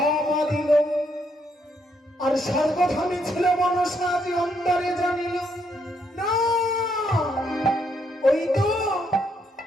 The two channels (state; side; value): normal; both; correlation 0.74